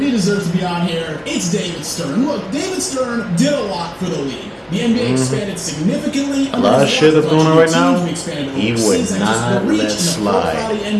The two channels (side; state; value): both; identical; correlation 1.00